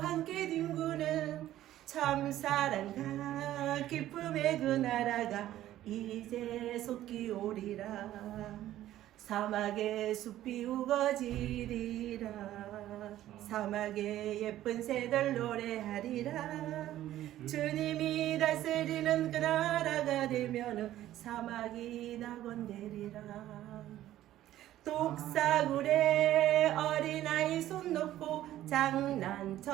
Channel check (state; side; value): quieter; left; 13.5 dB